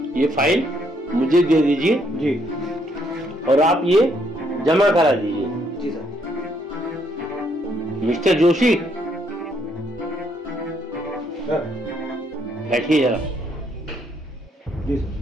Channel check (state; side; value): normal; both; correlation 0.71